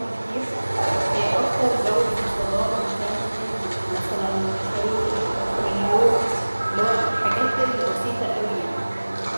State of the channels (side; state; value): both; inverted; correlation -1.00